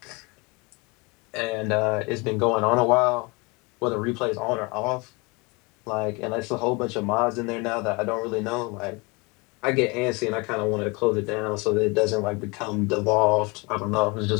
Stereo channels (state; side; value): quieter; right; 27.7 dB